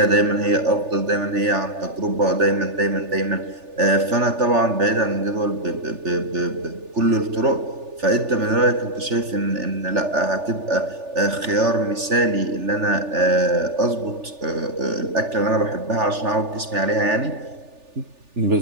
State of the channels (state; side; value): late; left; 3.4 ms